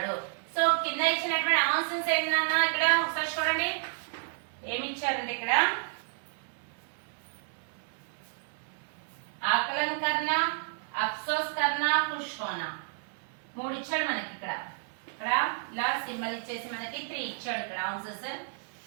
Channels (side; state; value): left; silent; 57 dB below the other